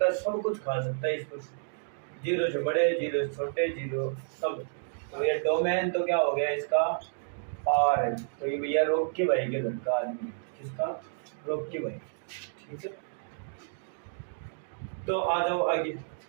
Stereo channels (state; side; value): silent; left; digital silence